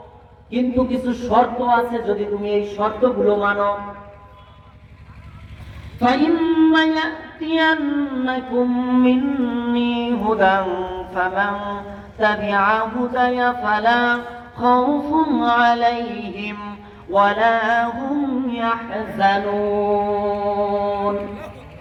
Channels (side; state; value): both; identical; correlation 1.00